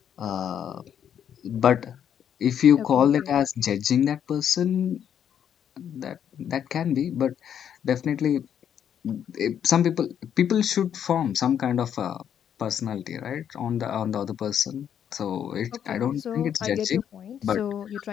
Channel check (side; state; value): right; quieter; 9.0 dB